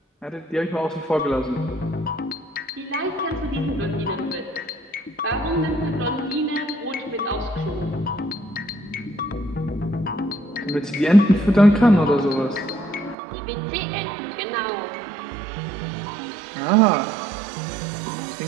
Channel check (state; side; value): drops out; left; at 13.2 s